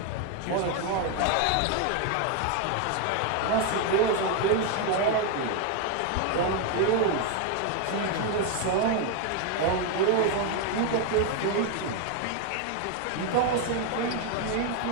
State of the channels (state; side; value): different; both; correlation 0.01